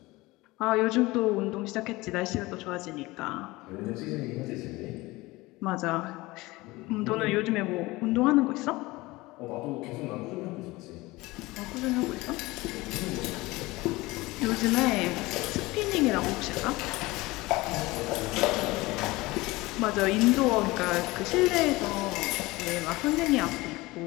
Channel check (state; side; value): quieter; right; 21.0 dB